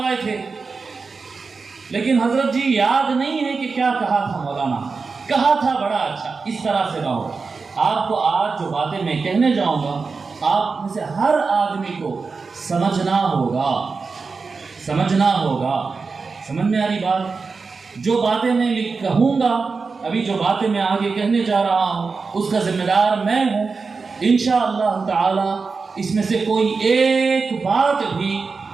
تھے، لیکن حضرت جی یاد نہیں ہے کہ کیا کہا تھا مولانا، کہا تھا بڑا اچھا، اس طرح سے رہو۔ آپ کو آج جو باتیں میں کہنے جاؤں گا، آپ میں سے ہر آدمی کو سمجھنا ہوگا، سمجھنا ہوگا۔ سمجھ میں آ رہی بات؟ جو باتیں میں کہوں گا، ابھی جو باتیں میں آگے کہنے جا رہا ہوں، اس کا ذمہ دار میں ہوں۔ انشاءاللہ تعالی اس میں سے کوئی ایک بات بھی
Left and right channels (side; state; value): left; quieter; 4.6 dB